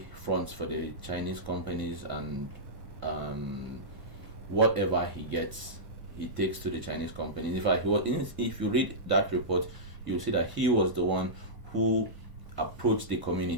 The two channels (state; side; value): late; left; 1.0 ms